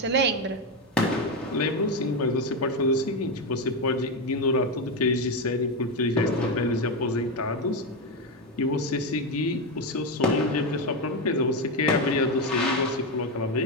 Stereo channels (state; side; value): normal; both; correlation 0.10